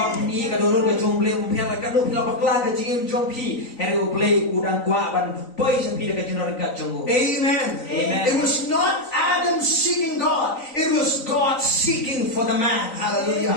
ni ka donor ka jong ble mpia ka no pila bakla ka jing jong pi here u ble udang kwa ban poi sa pi ka jinor ka jong. Amen. Amen. It was not Adam seeking God. It was God seeking for the man. Hallelujah.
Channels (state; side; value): late; right; 3.9 ms